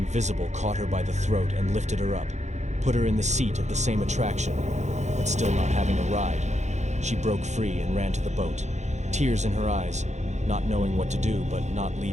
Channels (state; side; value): late; left; 0.33 ms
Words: caught her by the throat and lifted her up, put her in the seat of the same attraction, but still not having a ride. She broke free and ran to the boat, tears in her eyes, not knowing what to do but not